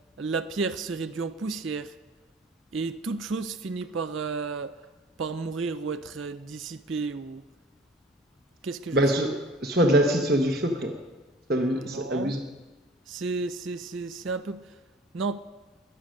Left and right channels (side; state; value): both; normal; correlation 0.47